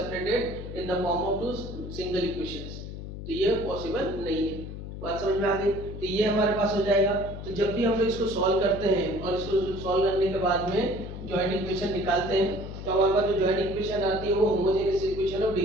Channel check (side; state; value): left; noise; hum, 9 dB below the sound